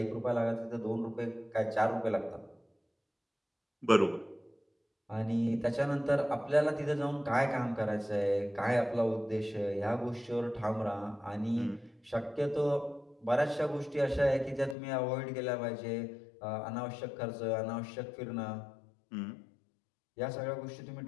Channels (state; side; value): drops out; right; at 14.8 s